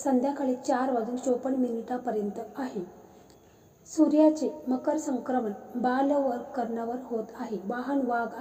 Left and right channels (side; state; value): both; identical; correlation 1.00